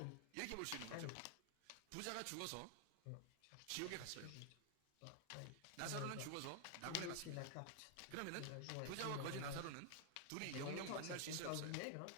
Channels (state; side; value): different; both; correlation 0.00